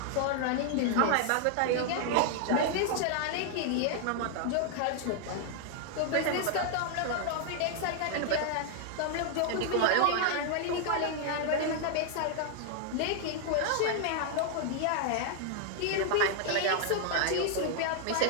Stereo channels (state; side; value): different; both; correlation 0.00